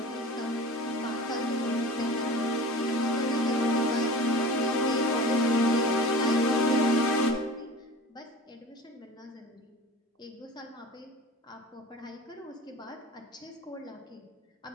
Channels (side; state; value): both; normal; correlation 0.38